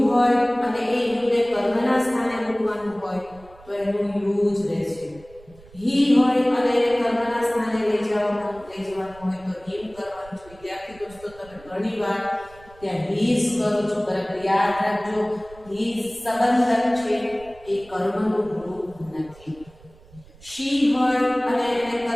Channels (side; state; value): right; noise; rumble, 23 dB below the sound